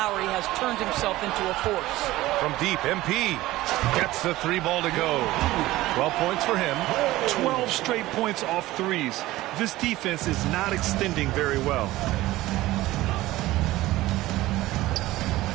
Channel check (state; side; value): quieter; left; 17.1 dB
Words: has turned himself into a force. From deep, MP gets the 3 ball to go. 12 points for him. 12 straight points off threes. This defense is not extending very well.